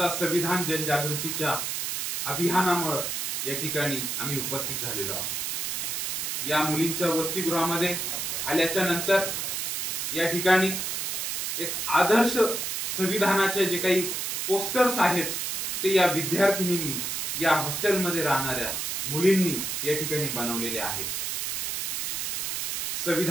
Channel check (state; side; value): noise; right; hiss, 2 dB below the sound